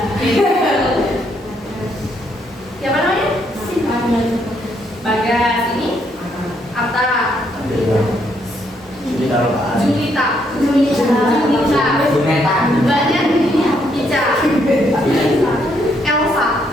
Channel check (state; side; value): normal; both; correlation 0.73